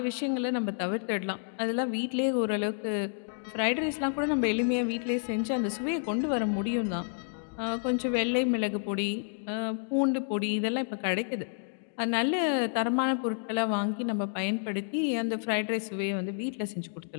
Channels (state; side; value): silent; right; digital silence